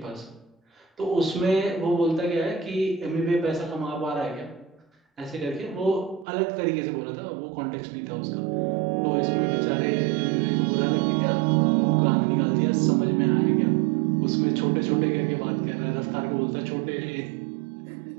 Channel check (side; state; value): left; drops out; at 6.2 s